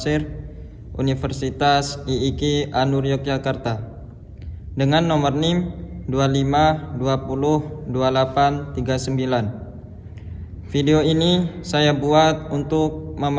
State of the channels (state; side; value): identical; both; correlation 1.00